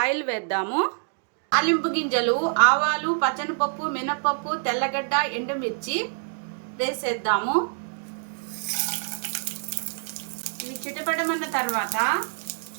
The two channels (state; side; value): silent; left; digital silence